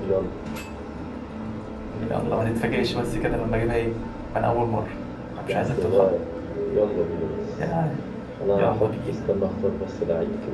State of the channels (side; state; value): both; identical; correlation 1.00